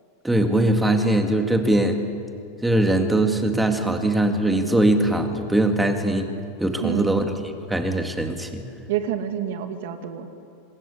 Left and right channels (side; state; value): both; normal; correlation 0.61